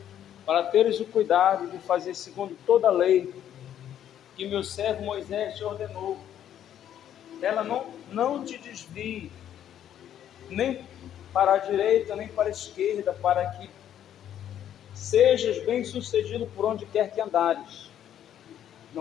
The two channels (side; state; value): right; quieter; 10.5 dB